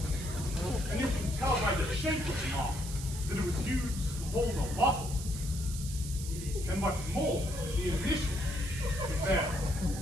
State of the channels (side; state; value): right; noise; hiss, 10 dB below the sound